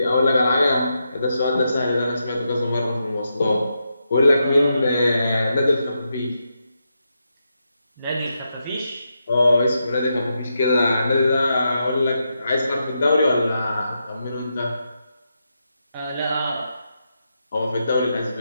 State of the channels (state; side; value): inverted; both; correlation -0.85